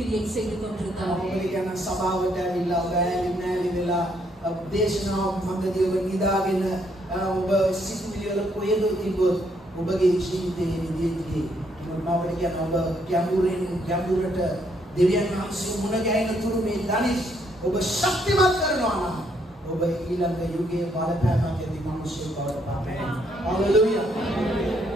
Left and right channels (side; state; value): both; normal; correlation 0.72